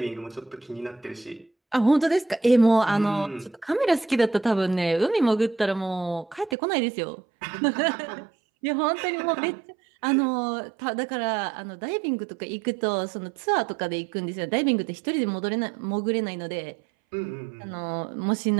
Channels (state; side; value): drops out; left; at 6.6 s